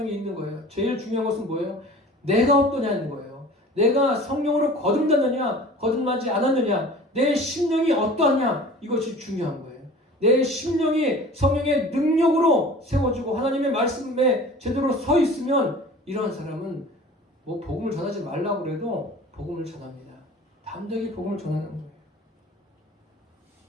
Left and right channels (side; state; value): both; normal; correlation 0.43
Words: 있는 거예요. 제일 중요한 것은 뭐예요? 내가 어떠냐는 거예요. 내가 성령으로 거듭났느냐 거듭나지 않았느냐 내 심령이 어떠하냐 이것이 중요한 거예요. 내 심령이 성령의 능력으로 세워지고 하나님의 말씀에 제대로 서 있으면 이러한 사람은 뭐 복음을 전하지 말라고 그래도 복음을 전합니다. 담대하게 복음을 전하는 거예요.